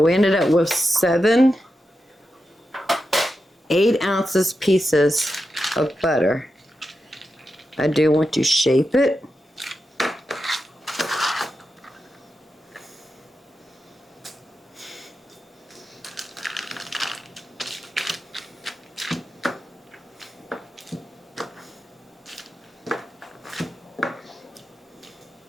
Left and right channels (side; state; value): both; normal; correlation 0.89